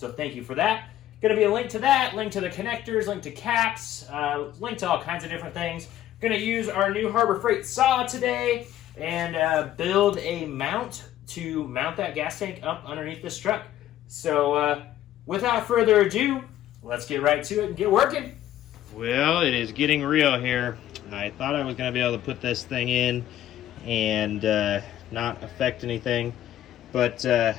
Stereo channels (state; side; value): quieter; right; 12.6 dB